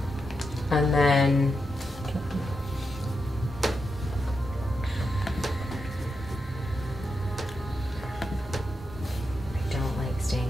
And then I don't like staying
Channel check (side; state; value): both; normal; correlation 0.86